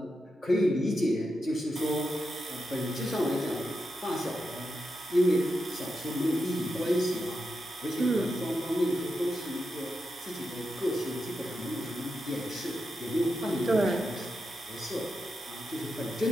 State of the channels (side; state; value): both; normal; correlation 0.87